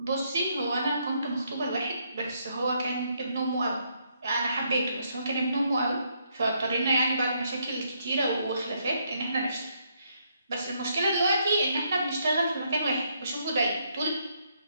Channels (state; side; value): inverted; both; correlation -0.74